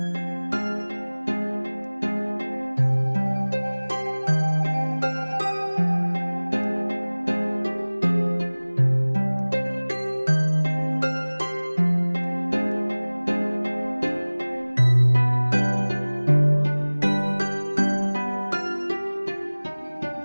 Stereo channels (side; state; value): both; inverted; correlation -1.00